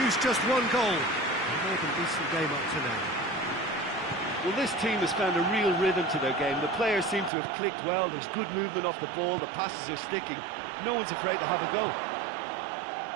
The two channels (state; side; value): drops out; left; at 7.3 s